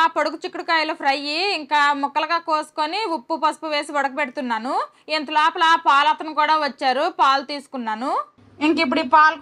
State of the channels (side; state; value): both; identical; correlation 1.00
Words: పొడుగు చిక్కుడుకాయలు ఫ్రై ఇంకా ముక్కలుగా కోసుకొని ఉప్పు పసుపు వేసి ఉడకబెడుతున్నాను. ఇంత లోపల పాలతను కూడా వచ్చారు, పాలు తీసుకున్నాను. ఇంక ఇప్పుడు ఈ పాలు